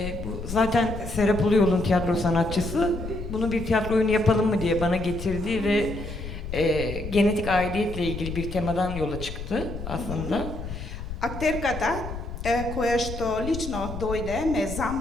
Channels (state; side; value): noise; left; rumble, 8 dB below the sound